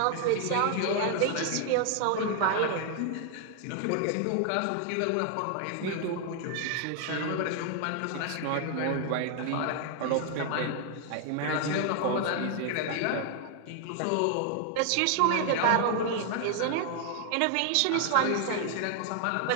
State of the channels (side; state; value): both; different; correlation 0.00